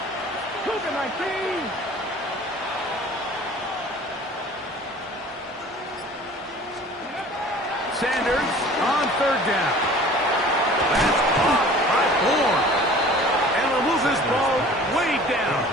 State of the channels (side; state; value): both; normal; correlation 0.46